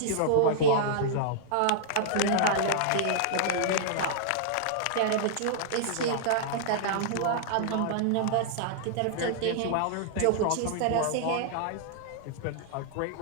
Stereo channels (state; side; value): different; both; correlation -0.01